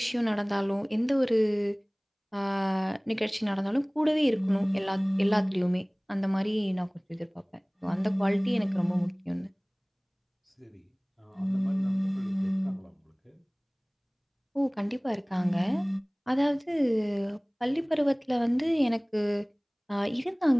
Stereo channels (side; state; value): both; identical; correlation 1.00